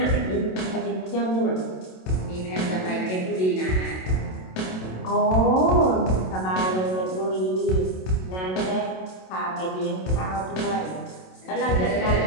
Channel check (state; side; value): late; right; 27 ms